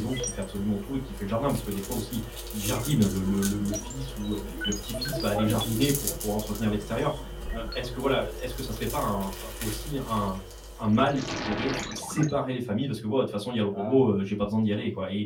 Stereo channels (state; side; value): identical; both; correlation 1.00